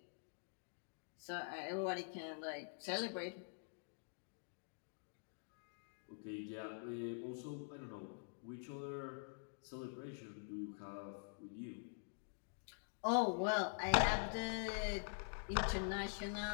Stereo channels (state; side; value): silent; right; digital silence